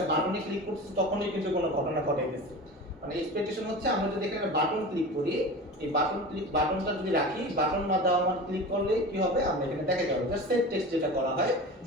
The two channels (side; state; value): both; normal; correlation 0.32